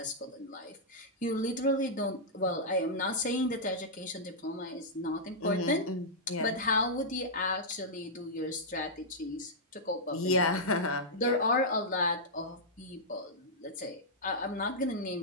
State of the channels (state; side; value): normal; both; correlation -0.09